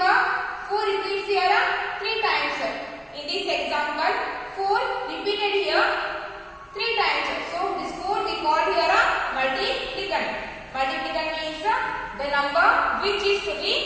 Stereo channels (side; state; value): both; identical; correlation 1.00